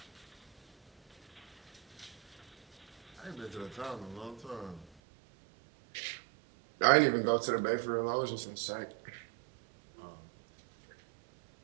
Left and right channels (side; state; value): left; drops out; at 4.9 s